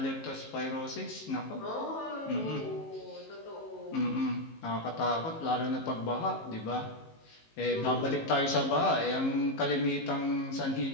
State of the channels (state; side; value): late; right; 19 ms